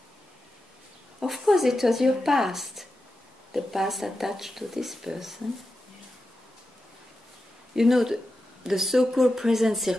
Of course, it was your past. The past attached to this person. You know, the so-called present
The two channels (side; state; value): both; normal; correlation 0.90